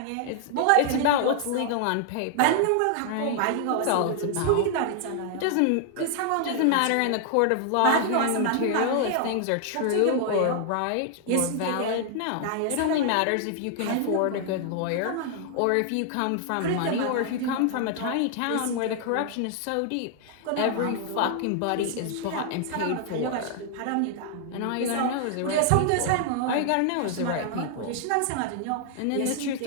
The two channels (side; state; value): both; different; correlation -0.01